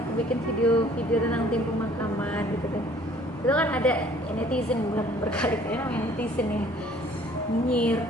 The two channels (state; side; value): normal; both; correlation 0.56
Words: bikin video tentang tim pemakaman gitu kan, itu kan ada netizen belum berkali-kali namanya netizen ya nyinyir,